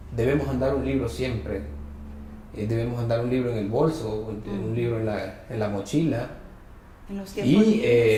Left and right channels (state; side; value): identical; both; correlation 1.00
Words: debemos andar un libro siempre, debemos andar un libro en el bolso, un libro en la mochila,